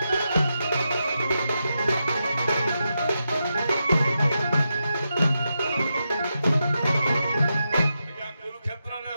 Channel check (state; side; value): inverted; both; correlation -0.87